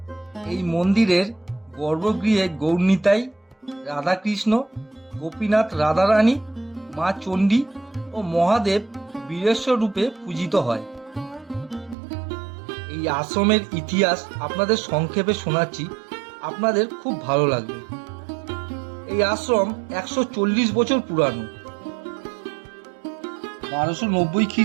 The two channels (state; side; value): drops out; left; at 12.0 s